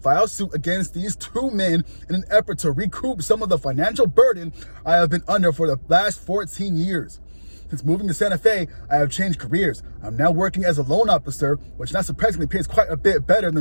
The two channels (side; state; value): both; inverted; correlation -1.00